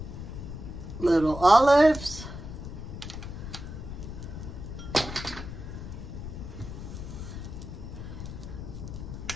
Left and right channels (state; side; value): noise; left; rumble, 8 dB below the sound